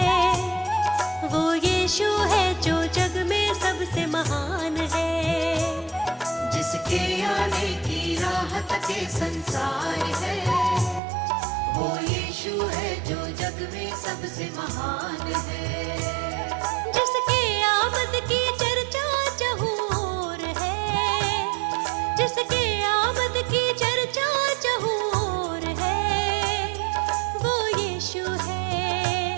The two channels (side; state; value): left; drops out; at 11.0 s